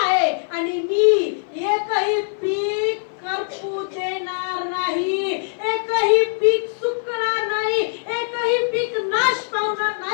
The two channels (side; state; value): right; silent; 58 dB below the other